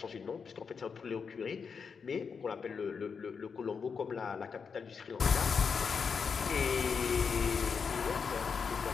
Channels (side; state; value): right; quieter; 5.8 dB